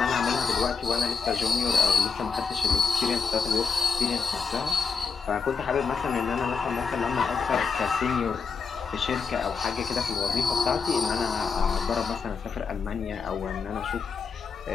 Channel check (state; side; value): quieter; right; 5.3 dB